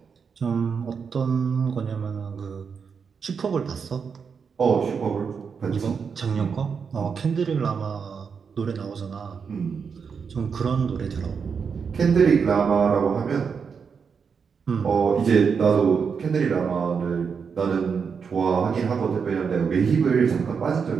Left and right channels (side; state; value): left; quieter; 6.1 dB